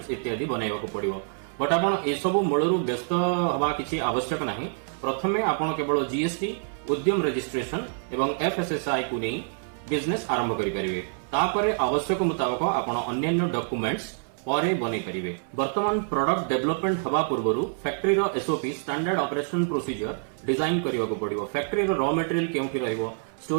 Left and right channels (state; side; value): silent; left; 60 dB below the other